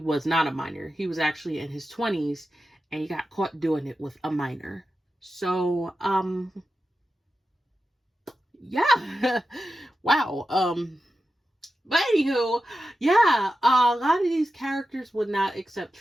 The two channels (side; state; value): both; normal; correlation 0.91